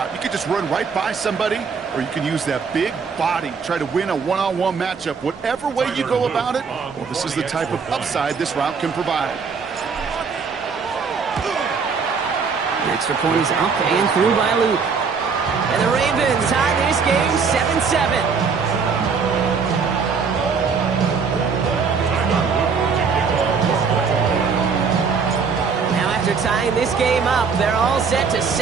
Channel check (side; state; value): left; quieter; 5.5 dB